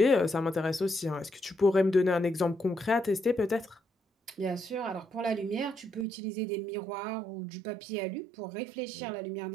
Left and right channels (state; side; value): drops out; left; at 6.1 s